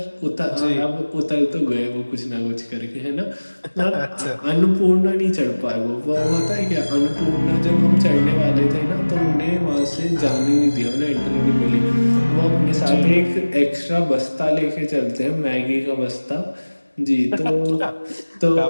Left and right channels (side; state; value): both; inverted; correlation -1.00